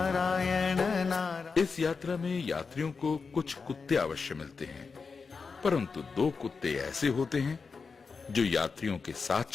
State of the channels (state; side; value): quieter; right; 5.0 dB